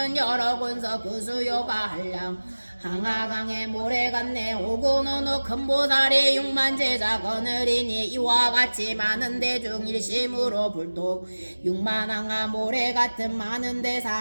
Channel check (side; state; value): both; inverted; correlation -1.00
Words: 여러 군서 그 수요가 한량 항하강에 모래 같네. 오고 어느 큰 보살이 6만 제자 거느리니 이와 같이 많은 대중 일심으로 불독 6만 항하 모래 같은 많은 대사